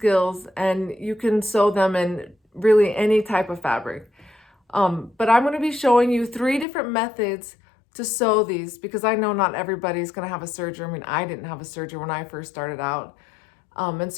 and you can sew them in really any type of fabric. But I'm going to be showing you 3 different methods to sew these because I know not everybody's going to have a serger. I mean, I didn't have a serger when I first started out. And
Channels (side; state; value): right; drops out; at 6.7 s